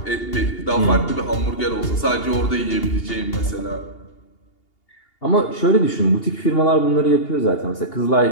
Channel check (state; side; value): late; right; 2.8 ms